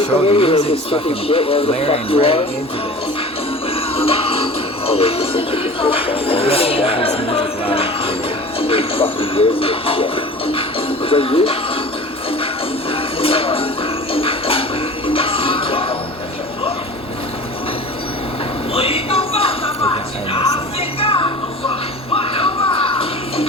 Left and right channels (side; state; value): both; normal; correlation 0.39